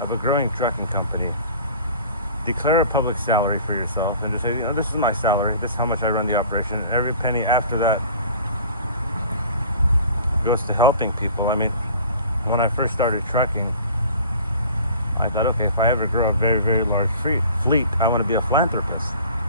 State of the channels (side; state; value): both; inverted; correlation -0.45